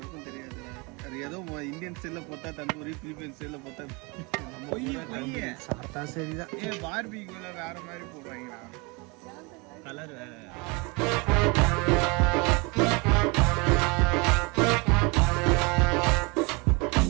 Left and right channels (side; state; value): left; quieter; 28.4 dB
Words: தெரியாது. அது ஏதோ இந்தியன் ஸ்டைலில் போட்டா தந்தூரி, பிலிப்பைன் ஸ்டைலில் போட்டா சாப்பிட்டா சரிதான். பார்பிக்யூல வேற மாதிரி போடுறாங்களா? கலர் வேற.